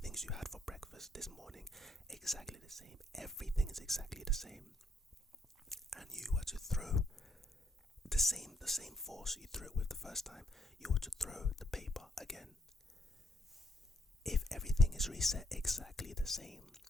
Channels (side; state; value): both; normal; correlation 0.72